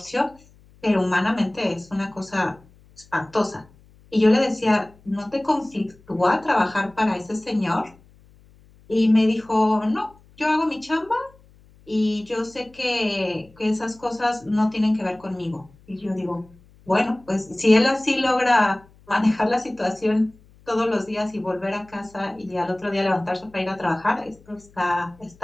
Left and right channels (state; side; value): noise; left; hum, 28 dB below the sound